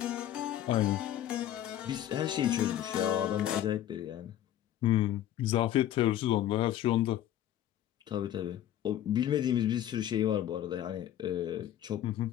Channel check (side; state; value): right; quieter; 11.8 dB